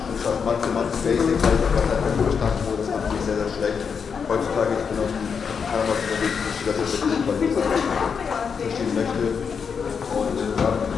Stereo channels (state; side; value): quieter; right; 6.3 dB